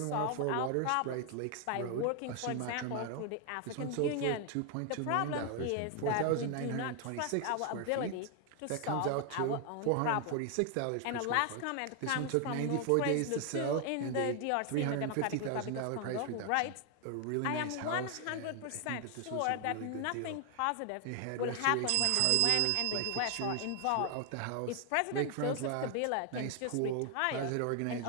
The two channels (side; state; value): both; different; correlation 0.00